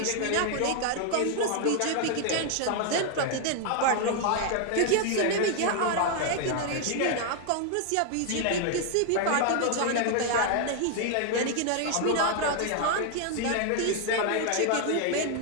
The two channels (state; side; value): different; both; correlation 0.00